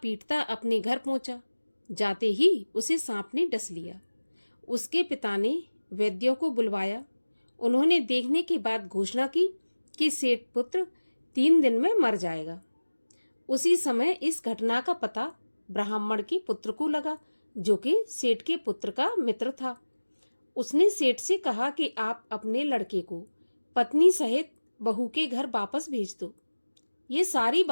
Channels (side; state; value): both; inverted; correlation -1.00